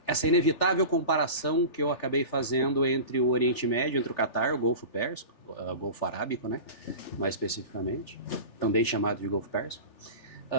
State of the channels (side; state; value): right; late; 3.4 ms